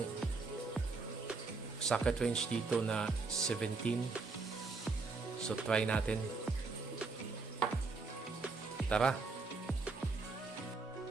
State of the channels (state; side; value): quieter; left; 4.0 dB